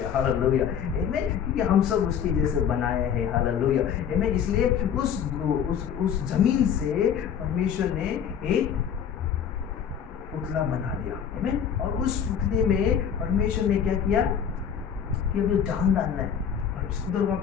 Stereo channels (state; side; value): quieter; right; 8.1 dB